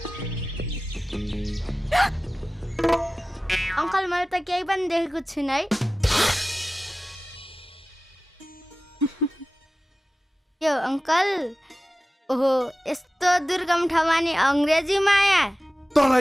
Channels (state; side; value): normal; both; correlation 0.96